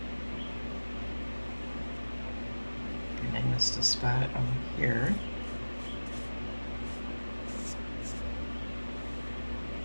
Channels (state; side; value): inverted; both; correlation -1.00